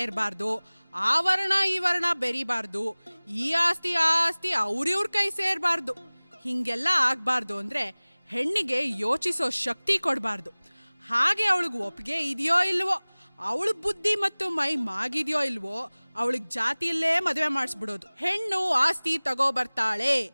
ಆ ವರ್ಣ ಈ ವರ್ಣ ಬೆರಿಬಾರ್ದು, ಈ ಆಸ್ತಿ ಆ ಆಸ್ತಿ ಅವ್ರಿವ್ರ ಕೈ ಸೇರ್ಬಾರ್ದು. ಹಿಂಗೆಲ್ಲ ಆಗ್ಬಾರ್ದು ಅಂದ್ರೆ ಹೆಣ್ಣಿಗೆ ಯೋಚಿಸೋ ಶಕ್ತಿ ಕೊಡಬಾರ್ದು. ಹಾಗೆ ಅವಳಿಗೆ ಒಪ್ಪಿಗೆ ಇದೆಯೋ ಇಲ್ವೋ, ಅವಳ ಬುದ್ಧಿ ಮತ್ತು ಮೈ ಮಾಗಿದೆಯೋ ಇಲ್ವೋ, ಅವಳಿಗೆ ಜಾತಿಯಲ್ಲೇ ಮದುವೆ ಮಾಡಿಸ್ಬಿಡೋದು. ಹೆಣ್ಣು ಆಸ್ತಿ ತಗೋಬರ್ತಾಳೆ,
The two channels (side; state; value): both; inverted; correlation -1.00